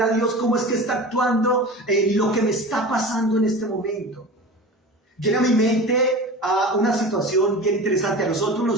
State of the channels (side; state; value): both; normal; correlation 0.33